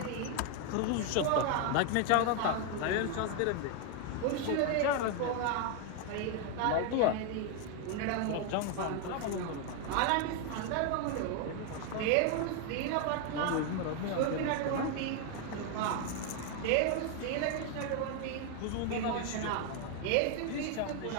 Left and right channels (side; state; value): both; different; correlation 0.01